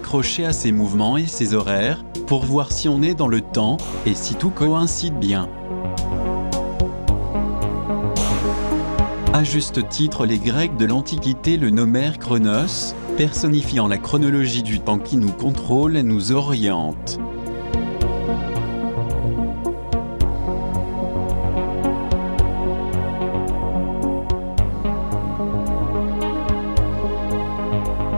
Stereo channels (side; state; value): both; inverted; correlation -1.00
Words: à ces mouvements et ces horaires, pour voir si on est dans le temps, et si tout coïncide bien. À juste titre, les Grecs de l'Antiquité le nommèrent Chronos, personnifiant la chronologie du temps qui nous contrôle et nous oriente.